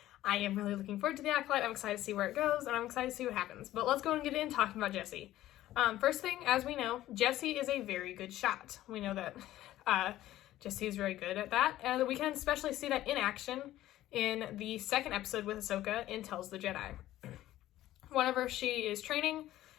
I am really looking forward to the Acolyte. I'm excited to see where it goes, and I'm excited to see what happens. But let's go and get in talking about Jesse. First thing, as we know, Jesse is a very good shot. We know that Jesse is very good at that, and we can especially see that in action in the second episode with Ahsoka in Tells the Jedi. Whenever she is training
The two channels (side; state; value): right; quieter; 14.4 dB